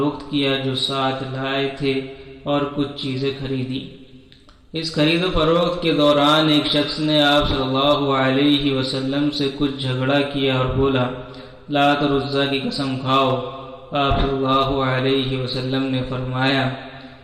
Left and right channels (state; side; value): identical; both; correlation 1.00